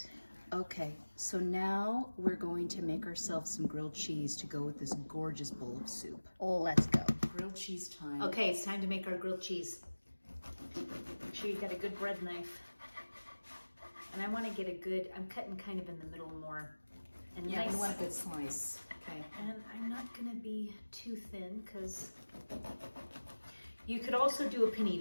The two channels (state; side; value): inverted; both; correlation -1.00